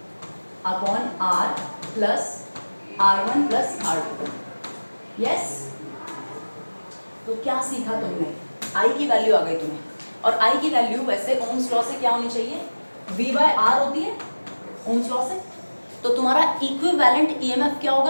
upon R plus R1 plus R2। Yes. तो क्या सीखा तुमने, I की वैल्यू आ गई तुम्हें, और I की वैल्यू वैसे ओम्स लॉ से क्या होनी चाहिए, V बाय R होती है ओम्स लॉ से। तो तुम्हारा इक्विवेलेंट EMF क्या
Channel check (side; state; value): both; inverted; correlation -1.00